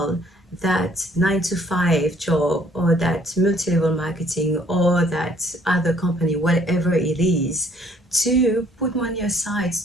that 9 to 5 job, or that multi-level marketing, or that other company, whatever it is, to put money aside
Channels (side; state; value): both; normal; correlation 0.62